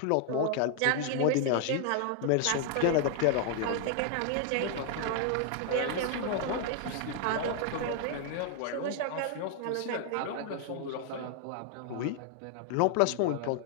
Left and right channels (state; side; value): different; both; correlation 0.00